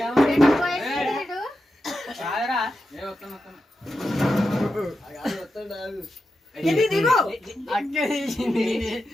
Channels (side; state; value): both; normal; correlation 0.89